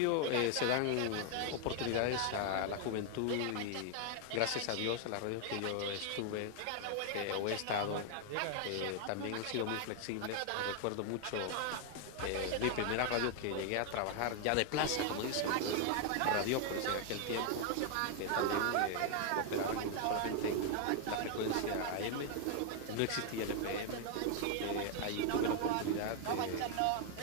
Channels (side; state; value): both; different; correlation 0.00